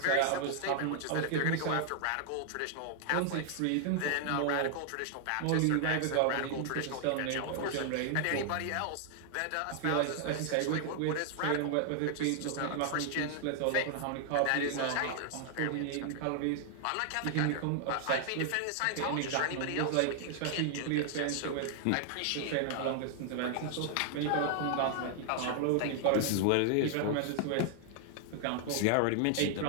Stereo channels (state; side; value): different; both; correlation 0.00